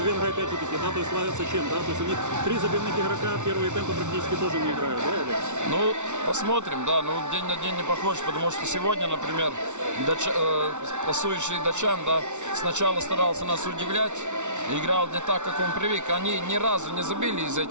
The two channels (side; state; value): left; late; 0.84 ms